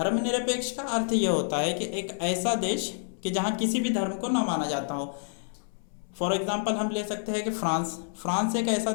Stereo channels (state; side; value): silent; right; 59 dB below the other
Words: का अर्थ यह होता है कि एक ऐसा देश कि जहाँ किसी भी धर्म को न माना जाता हो। फॉर एग्जाम्पल हम ले सकते हैं कि फ्रांस एक ऐसा